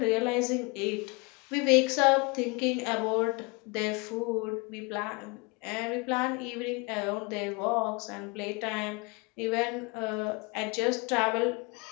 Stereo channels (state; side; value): quieter; right; 28.3 dB